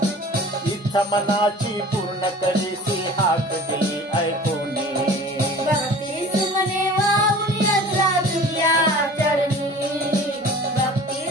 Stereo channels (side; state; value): both; normal; correlation 0.43